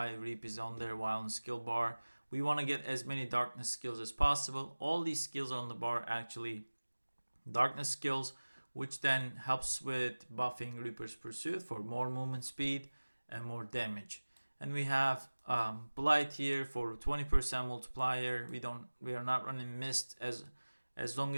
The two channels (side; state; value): both; inverted; correlation -1.00